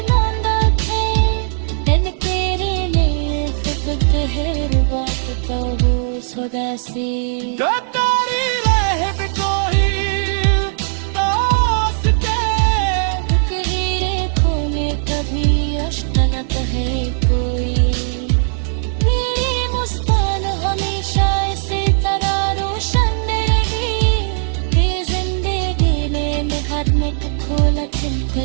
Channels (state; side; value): silent; left; digital silence